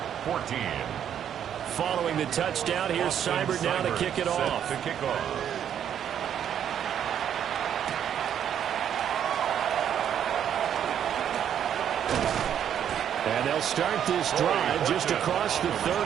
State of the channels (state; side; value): quieter; left; 9.3 dB